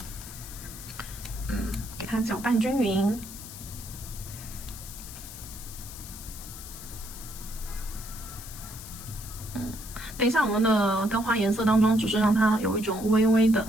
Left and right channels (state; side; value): noise; left; hiss, 13 dB below the sound